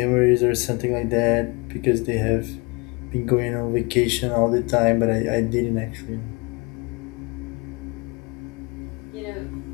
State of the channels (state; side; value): quieter; right; 28.4 dB